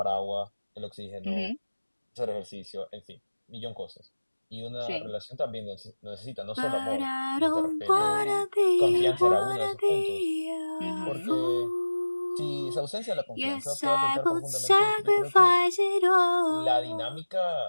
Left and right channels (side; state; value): both; inverted; correlation -1.00